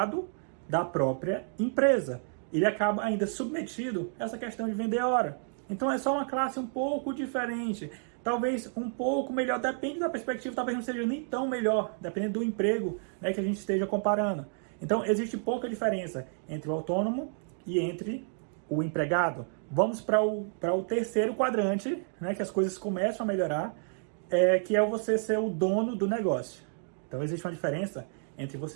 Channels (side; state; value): left; silent; 58 dB below the other